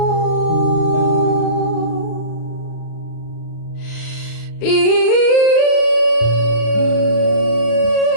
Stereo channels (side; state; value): right; late; 36 ms